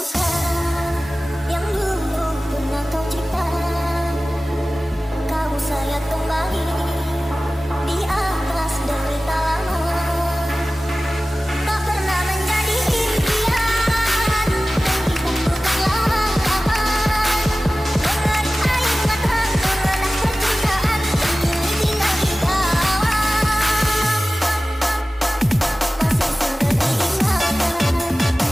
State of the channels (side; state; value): both; normal; correlation 0.97